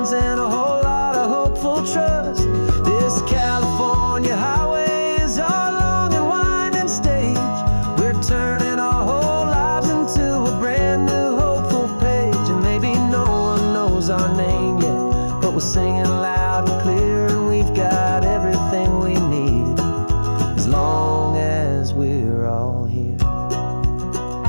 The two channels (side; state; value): both; inverted; correlation -1.00